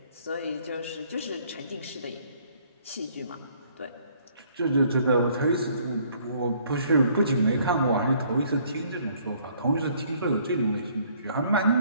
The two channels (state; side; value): inverted; both; correlation -0.62